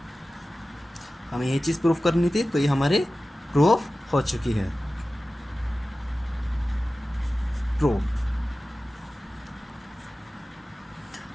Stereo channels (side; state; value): both; normal; correlation 0.96